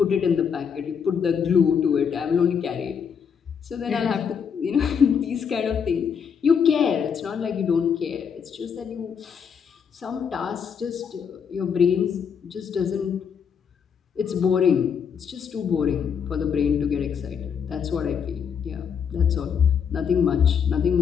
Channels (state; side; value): quieter; right; 7.0 dB